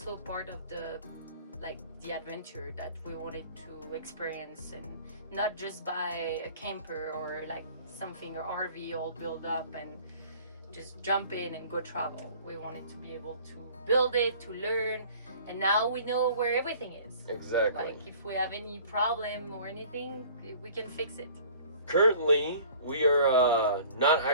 part of the like the adventure that we wanted to experience, and not just buy a camper or like something or RV all built up and just jump in and go travel. We wanted to be able to build it, to learn, and now we know where everything is. Exactly. Like if we have any problem or anything, we can fix it. Currently, we are not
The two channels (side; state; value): both; inverted; correlation -0.49